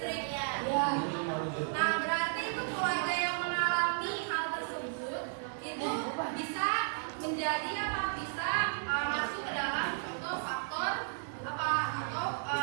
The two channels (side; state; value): left; silent; digital silence